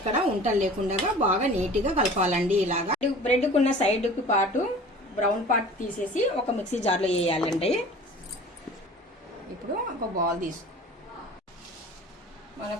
ఉంటలు లేకుండా బాగా నీట్గా కలపాలండి. ఇలాగా బ్రెడ్కున్న సైడ్కి పాటు బ్రౌన్ పార్ట్ తీసేసి ఒక మిక్సీ జార్లో వేయాలండి. ఇప్పుడు ఒక బౌల్ తీసు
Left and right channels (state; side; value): normal; both; correlation 0.43